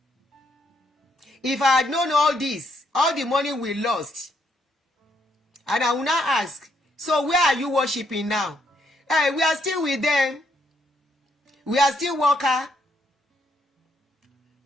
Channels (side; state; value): both; normal; correlation 0.74